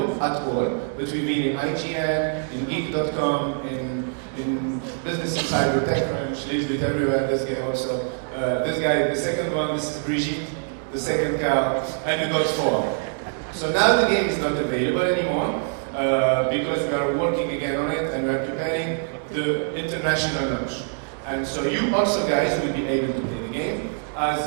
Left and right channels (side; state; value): left; silent; 62 dB below the other